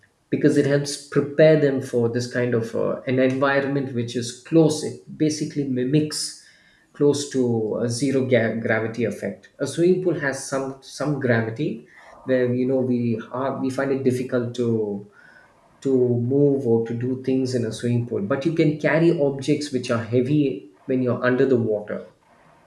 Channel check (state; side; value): identical; both; correlation 1.00